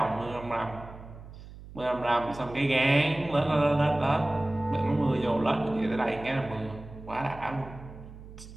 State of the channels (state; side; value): noise; right; hum, 16 dB below the sound